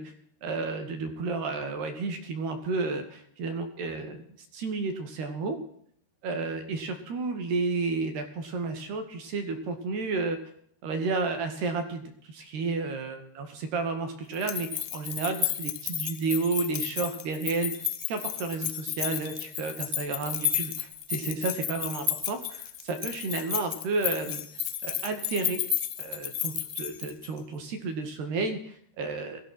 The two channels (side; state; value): left; late; 13 ms